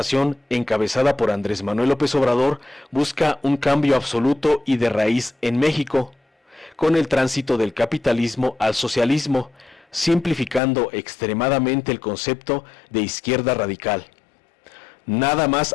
encabezada por Andrés Manuel López Obrador busca un cambio absoluto y de raíz en México, con el tránsito del capitalismo al socialismo, simplificando extremadamente el concepto de izquierda radical. Nada más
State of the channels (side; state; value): right; drops out; at 10.6 s